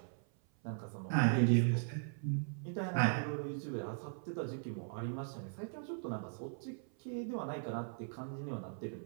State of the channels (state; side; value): silent; left; 52 dB below the other